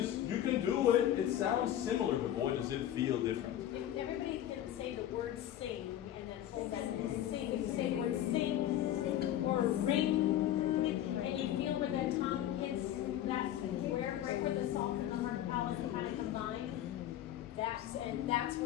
you can do it. It sounds similar, but boy, does it feel different. If everybody can say the word sing in that whole sentence. Sing. If you say the word sing or ring, and you feel where that tongue hits that square, right where the soft and the hard palate kind of combine, that's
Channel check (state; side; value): quieter; right; 11.9 dB